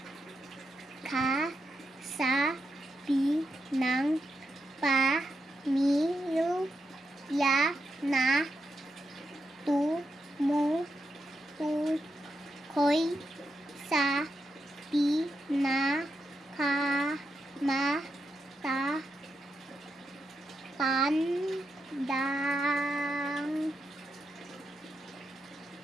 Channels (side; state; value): both; normal; correlation 0.85